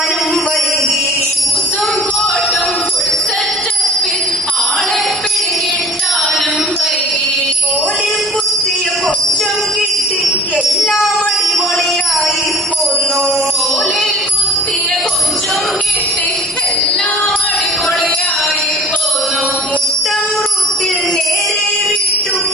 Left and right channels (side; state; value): both; normal; correlation 0.46